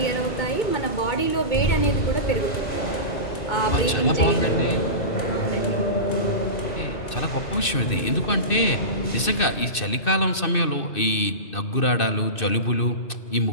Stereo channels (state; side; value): late; right; 2.6 ms